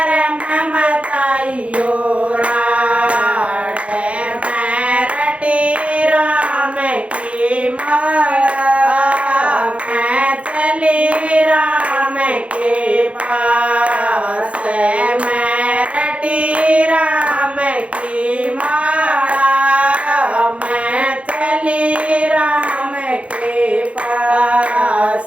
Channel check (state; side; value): late; left; 0.062 ms